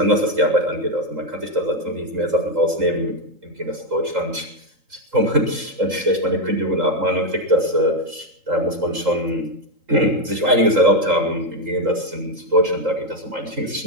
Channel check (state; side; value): late; left; 3.8 ms